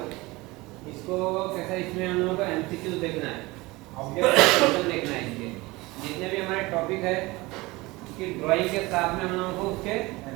इसको। कैसा इसमें हम लोगों को एमसीक्यू देखना है, ऑब्जेक्ट क्वेश्चन देखना है। इसके जितने भी हमारे टॉपिक है उसकी ड्राइंग के साथ में हम लोगों को उसके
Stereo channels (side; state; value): left; quieter; 21.9 dB